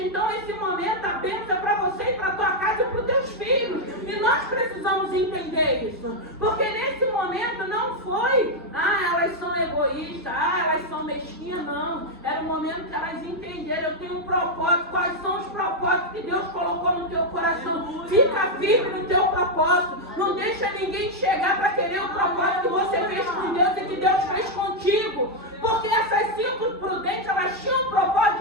então esse momento a bênção é para você e para a tua casa e para os teus filhos. E nós precisamos entender isso. Porque nesse momento não foi, elas são egoístas, elas são mesquinhas, não. Era o momento que elas entenderam, eu tenho um propósito, quais são os propósitos que Deus colocou no teu coração. Fica firme no teu propósito. Não deixa ninguém chegar para querer o propósito que você fez com Deus e que Deus fez contigo. Porque essas 5 prudentes, elas tinham o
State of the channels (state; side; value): normal; both; correlation 0.01